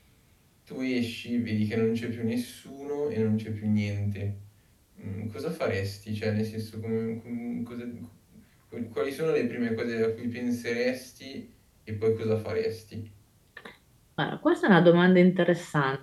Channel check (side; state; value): both; identical; correlation 1.00